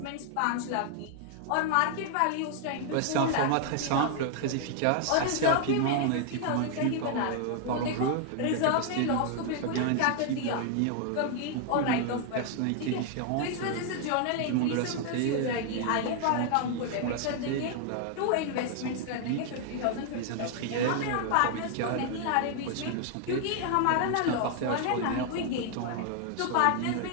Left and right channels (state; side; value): different; both; correlation 0.00